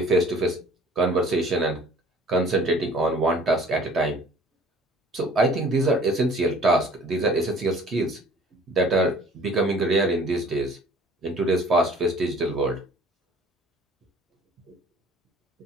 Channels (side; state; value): both; normal; correlation 0.51